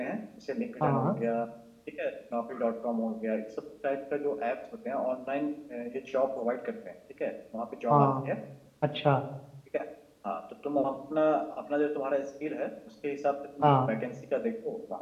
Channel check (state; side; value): identical; both; correlation 1.00